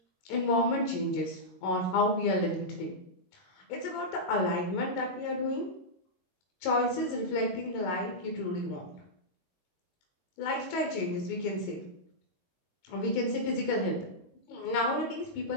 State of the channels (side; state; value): right; late; 22 ms